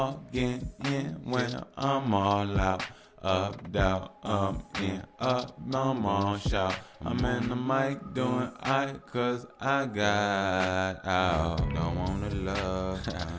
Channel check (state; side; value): identical; both; correlation 1.00